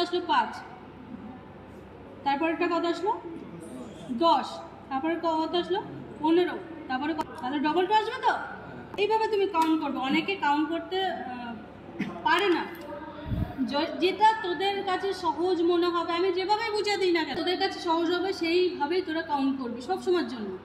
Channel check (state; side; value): identical; both; correlation 1.00